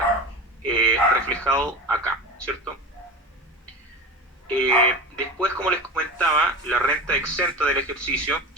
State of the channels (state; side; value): normal; both; correlation 0.28